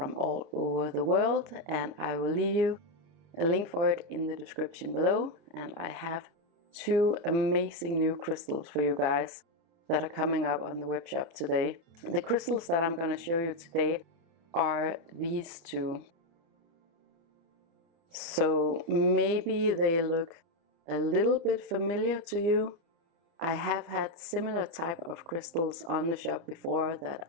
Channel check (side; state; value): left; late; 30 ms